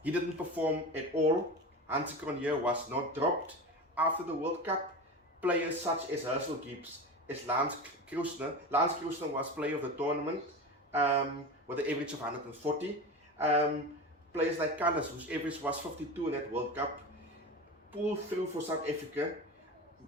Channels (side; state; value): both; normal; correlation 0.27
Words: He didn't perform at all. Hansi Cronje was not dropped. After the World Cup, players such as Herschel Gibbs, as Lance Krusner was player of the tournament with an average of 140. Players like Callis, whose average was 52 in that World Cup, pulled through for South Africa,